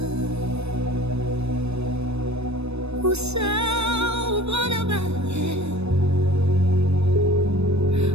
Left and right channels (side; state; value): left; late; 0.80 ms